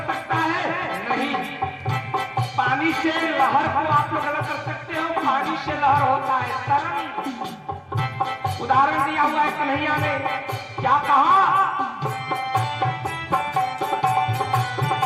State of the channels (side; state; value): both; identical; correlation 1.00